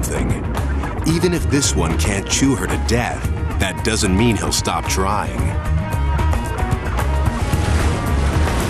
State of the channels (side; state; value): both; identical; correlation 1.00